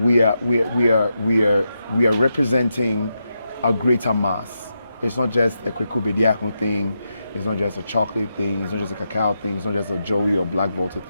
are representing a greater mass. It's not just a Kwaku Bediako thing. It's not just a chocolate thing. It's not just a cacao thing. It's not just a Joey or BlacVolta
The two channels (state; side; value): inverted; both; correlation -0.85